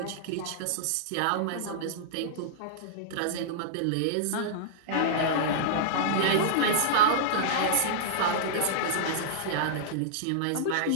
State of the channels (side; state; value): both; different; correlation -0.02